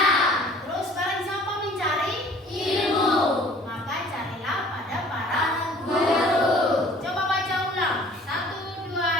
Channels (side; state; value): both; normal; correlation 0.51